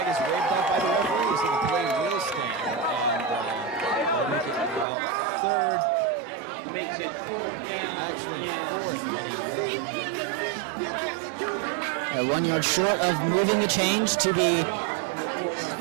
is waved off by the referee, so the play will stand. And they'll make it third. Makes it 4th down. 1 yard short of moving the change to be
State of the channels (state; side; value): drops out; left; at 4.9 s